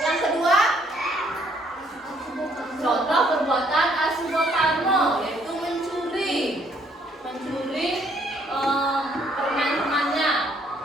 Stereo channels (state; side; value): normal; both; correlation 0.66